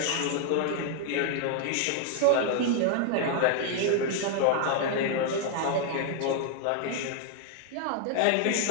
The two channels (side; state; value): both; different; correlation 0.00